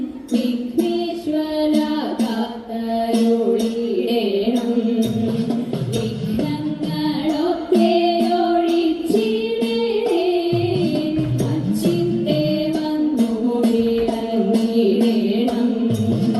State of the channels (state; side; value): identical; both; correlation 1.00